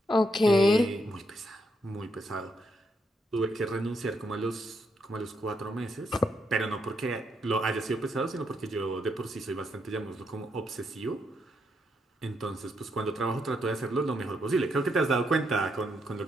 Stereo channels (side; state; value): both; normal; correlation 0.78